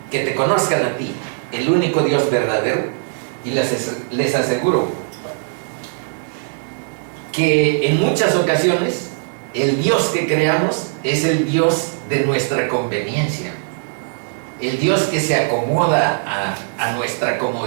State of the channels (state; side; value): silent; left; digital silence